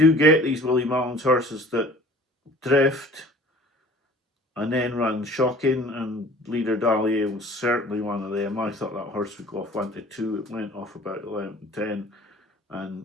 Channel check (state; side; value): normal; both; correlation 0.48